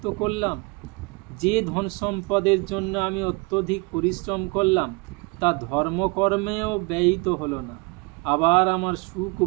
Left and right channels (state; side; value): quieter; left; 29.4 dB